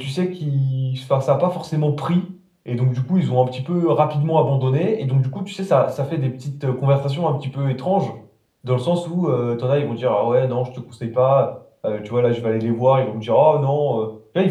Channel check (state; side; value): identical; both; correlation 1.00